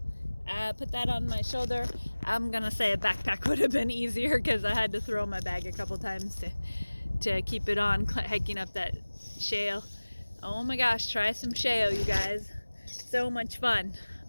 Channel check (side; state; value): both; inverted; correlation -1.00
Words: Put that on my shoulder. I'm gonna say a backpack would have been easier because I had to throw my bag a couple times to keep it on hiking up that shale. Oh my gosh, try some shale, you guys. So much fun.